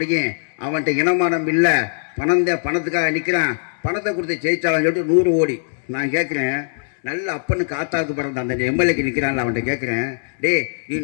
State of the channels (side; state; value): right; silent; digital silence